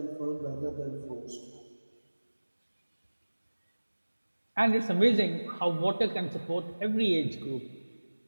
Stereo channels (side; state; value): both; inverted; correlation -1.00